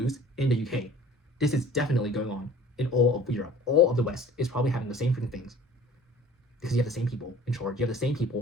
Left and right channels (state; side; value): normal; both; correlation 0.47